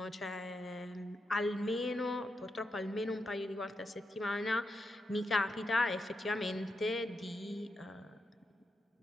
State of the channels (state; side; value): normal; both; correlation 0.85